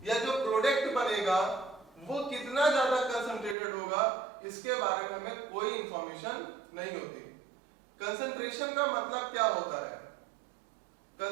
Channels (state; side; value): drops out; left; at 3.6 s